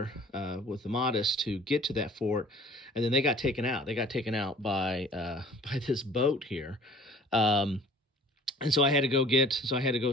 with the Mahdists to get to that fort, and then they got taken out. They got taken out by this boat here. And so I had to go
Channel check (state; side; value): normal; both; correlation 0.50